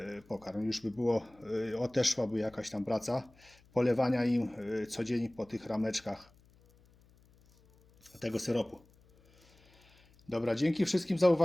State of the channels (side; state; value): left; noise; hum, 29 dB below the sound